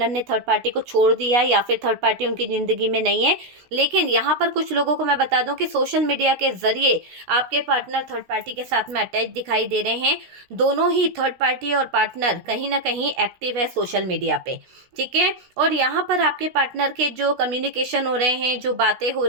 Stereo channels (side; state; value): left; late; 16 ms